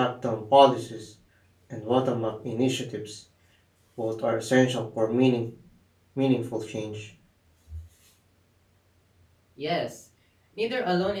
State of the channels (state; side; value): identical; both; correlation 1.00